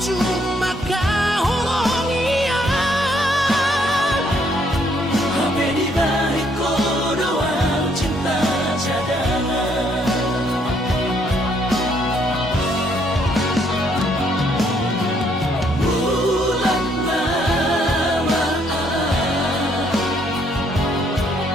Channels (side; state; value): both; normal; correlation 0.69